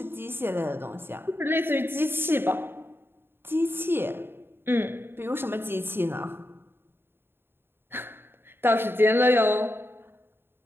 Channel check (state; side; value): late; left; 0.11 ms